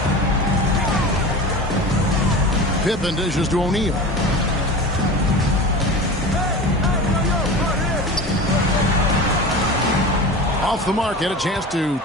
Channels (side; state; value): both; normal; correlation 0.32